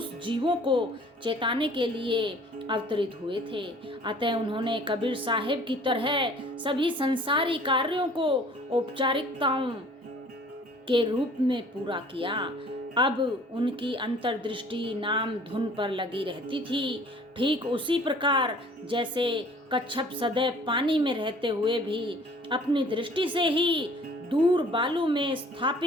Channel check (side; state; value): both; normal; correlation 0.52